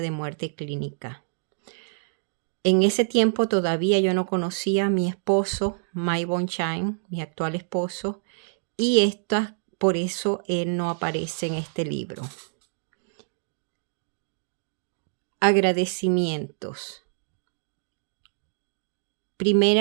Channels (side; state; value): left; silent; digital silence